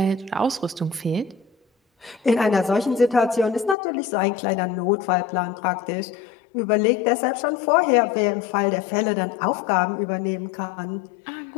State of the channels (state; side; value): drops out; right; at 3.8 s